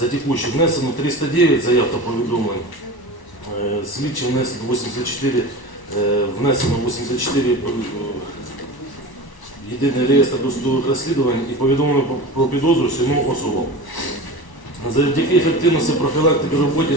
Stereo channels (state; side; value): late; right; 1.1 ms